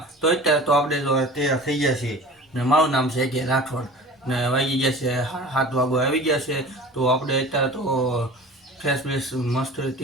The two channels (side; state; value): both; normal; correlation 0.39